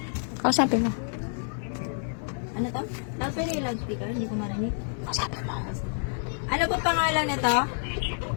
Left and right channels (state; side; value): silent; right; 59 dB below the other